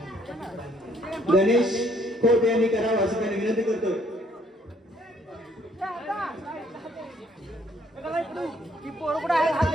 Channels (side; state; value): both; normal; correlation 0.65